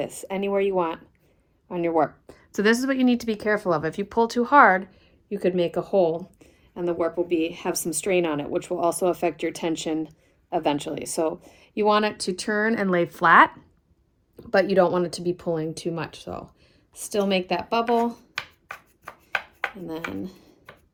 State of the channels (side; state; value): both; identical; correlation 1.00